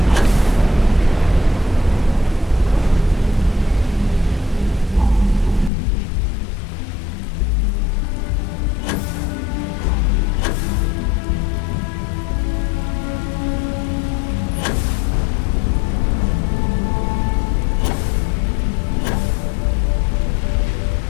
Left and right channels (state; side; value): drops out; right; at 5.7 s